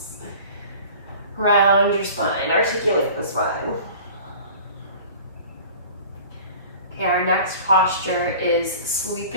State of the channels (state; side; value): inverted; both; correlation -0.42